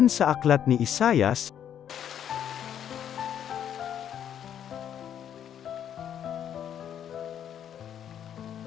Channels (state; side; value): quieter; right; 9.5 dB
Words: sa aklat ni Isaias,